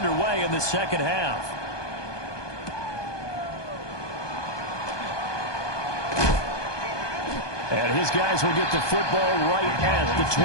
in the second half. And his guys will get the football right at the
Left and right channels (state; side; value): late; right; 1.2 ms